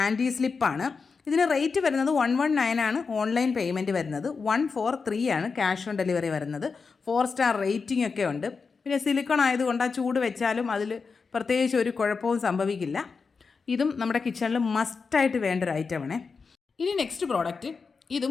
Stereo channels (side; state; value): right; quieter; 5.0 dB